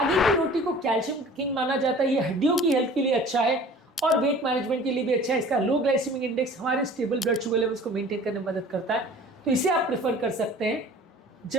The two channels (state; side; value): normal; both; correlation 0.46